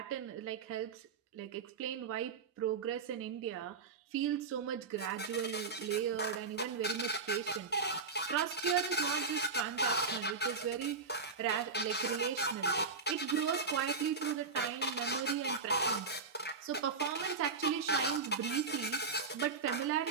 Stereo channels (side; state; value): left; quieter; 4.8 dB